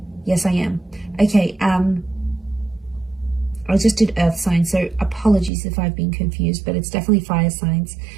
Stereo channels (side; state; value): left; drops out; at 5.5 s